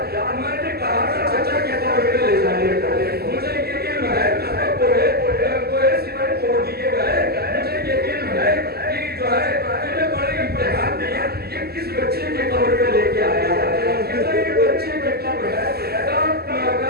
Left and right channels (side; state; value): left; late; 0.46 ms